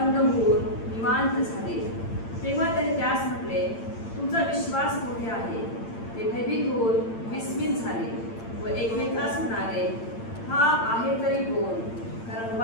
होऊन निवांत झाले. तेव्हा त्याने त्यास म्हटले, तुमचा विश्वास मोठे आहे. ते भयभीत होऊन विस्मित झाले व एकमेकास म्हणाले, हा आहे तरी कोण? कारण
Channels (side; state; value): right; late; 8.8 ms